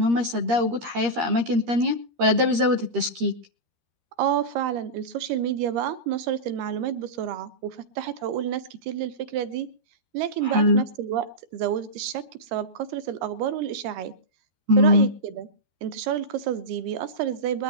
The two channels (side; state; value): left; late; 13 ms